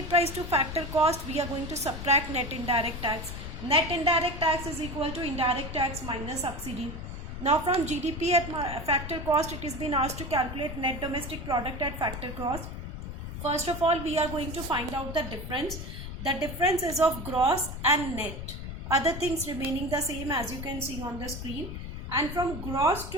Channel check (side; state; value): left; noise; rumble, 8 dB below the sound